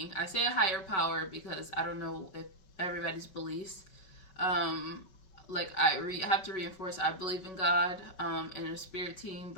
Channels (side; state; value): right; late; 5.3 ms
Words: I say a higher power because I don't know if everybody's beliefs. Like I have to reinforce, I believe in God and a spirit team,